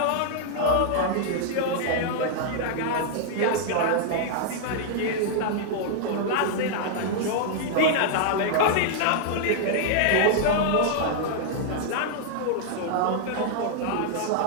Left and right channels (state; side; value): different; both; correlation -0.01